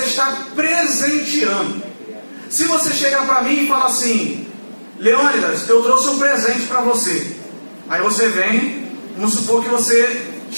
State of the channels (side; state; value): both; inverted; correlation -1.00